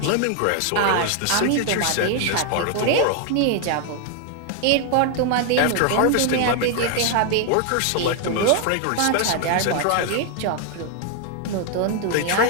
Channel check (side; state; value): both; different; correlation 0.00